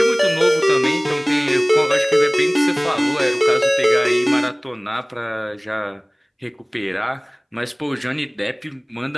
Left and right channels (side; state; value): both; identical; correlation 1.00